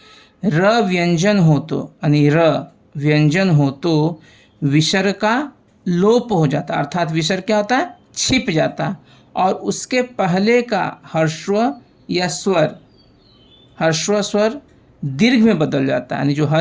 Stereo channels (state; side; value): identical; both; correlation 1.00